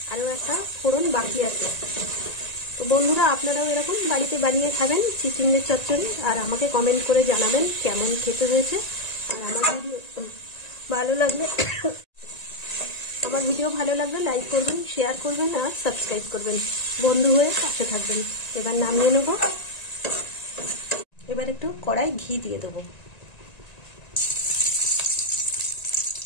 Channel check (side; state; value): right; late; 1.9 ms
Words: আরও একটা ফোড়ন বাকি আছে। তো বন্ধুরা, আপনারাও এরকম বাড়িতে বানিয়ে খাবেন চিচিঙ্গের চচ্চড়ি, আর আমাকে কমেন্ট করে জানাবেন কেমন খেতে হয়েছে। আর আমার ভিডিও ভালো লাগলে লাইক করবেন, শেয়ার করবেন আর সাবস্ক্রাইব করবেন। বন্ধু হয়ে পাশে থাকবেন। এবার নামিয়ে নেব। এবার একটু কড়াই ঘি দিয়ে দেবো।